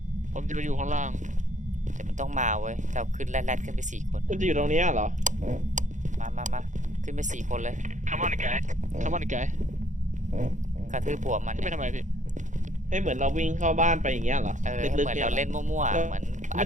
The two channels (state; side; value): late; left; 0.36 ms